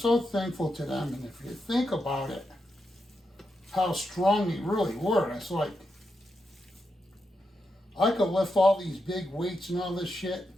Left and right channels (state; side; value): normal; both; correlation 0.85